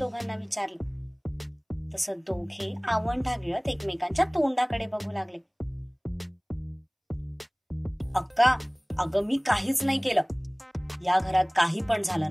विचारलं. तसं दोघे आवंढा गिळत एकमेकांच्या तोंडाकडे बघू लागले. अक्का, अगं मी काहीच नाही केलं. या घरात काही पण झालं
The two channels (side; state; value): both; identical; correlation 1.00